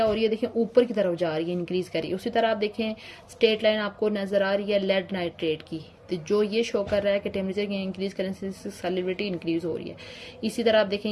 हो रही है, देखें ऊपर की तरफ जा रही है, इंक्रीज कर रही है। उसी तरह आप देखें स्ट्रेट लाइन आपको नजर आ रही है लेड नाइट्रेट की, तो जो ये शो कर रहा है कि टेम्परेचर की इंक्रीज करने से सॉल्युबिलिटी इंक्रीज हो रही है। इसी तरह आप देखें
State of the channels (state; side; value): identical; both; correlation 1.00